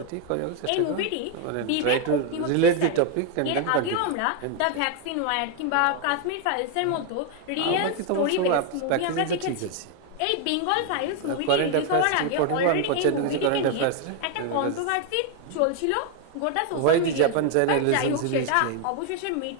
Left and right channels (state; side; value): different; both; correlation 0.01